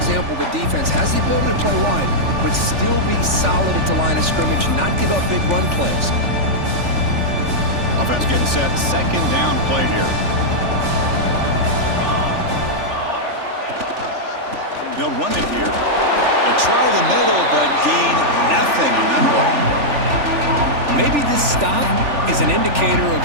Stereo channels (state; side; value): late; left; 3.4 ms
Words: The defense has the ability to play wide, but still be solid at the line of scrimmage, not give up big run plays. Offense getting set. Second down play here. They'll run it here. They try the middle, but gain nothing on that play. Maybe this stop is an indicator of